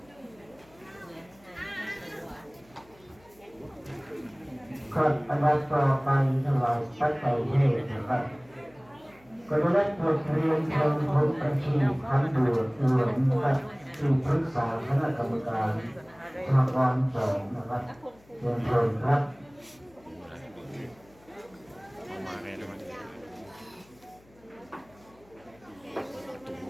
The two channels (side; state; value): left; noise; hum, 28 dB below the sound